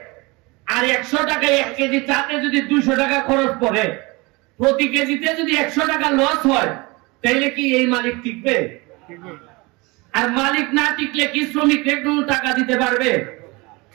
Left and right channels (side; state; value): left; quieter; 25.2 dB